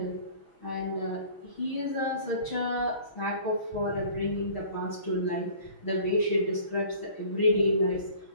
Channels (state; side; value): late; right; 6.2 ms